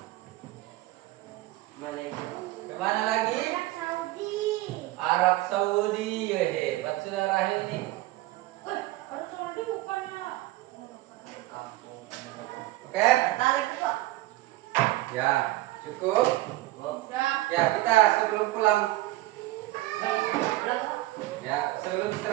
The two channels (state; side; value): quieter; left; 17.8 dB